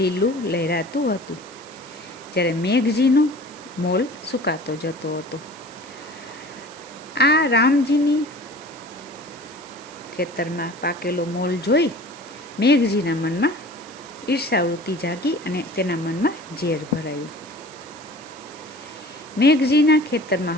લહેરાતું હતું, જ્યારે મેઘજીનો મોલ સુકાતો જતો હતો. આ રામજીની ખેતરમાં પાકેલો મોલ જોઈ મેઘજીના મનમાં ઈર્ષાવૃત્તિ જાગી અને તેના મનમાં ઝેર ભરાયું. મેઘજીના ખેતરમાં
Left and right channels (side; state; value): right; noise; hiss, 21 dB below the sound